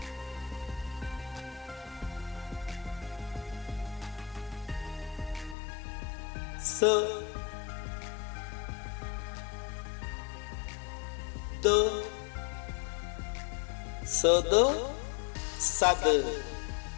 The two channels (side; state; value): right; drops out; at 5.6 s